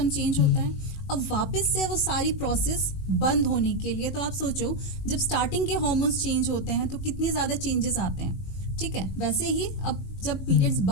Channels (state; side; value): late; right; 21 ms